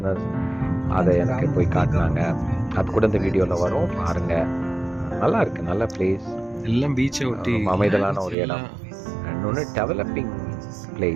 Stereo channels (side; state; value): left; drops out; at 8.3 s